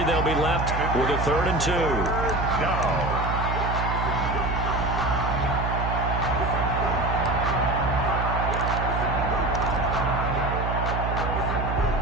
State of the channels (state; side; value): noise; right; hum, 2 dB below the sound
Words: they'll be left with a 3rd and 2.